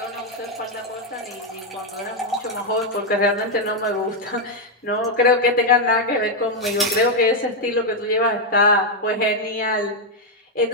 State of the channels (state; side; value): normal; both; correlation 0.02